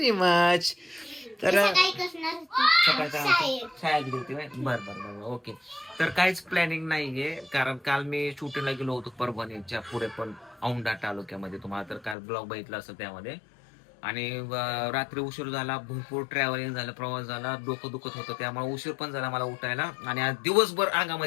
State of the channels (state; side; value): drops out; right; at 12.2 s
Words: मच. तर शाळेत गेली बर बर बर ओके. तर काहीच प्लॅनिंग नाहीये, कारण काल मी शूटिंगला गेलो होतो परभणीच्या पुढे पण औंढा तालुक्यामध्ये. तुम्हाला तर काल ब्लॉग बघितला असेल त्यामध्ये. आणि रात्री उशीर झाला, भरपूर ट्रॅव्हलिंग झालं, प्रवास झाला, डोकं दुखत होतं, त्यामुळे उशीर पण झाला मला उठायला. आणि आज दिवसभर